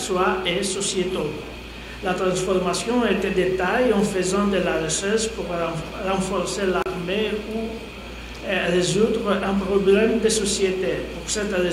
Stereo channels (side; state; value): both; identical; correlation 1.00